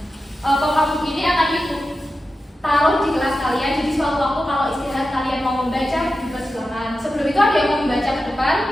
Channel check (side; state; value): both; normal; correlation 0.92